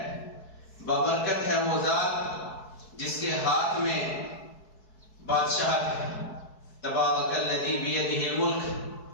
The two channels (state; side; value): late; right; 4.6 ms